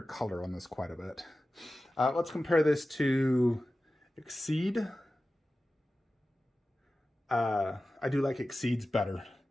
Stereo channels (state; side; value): normal; both; correlation 0.95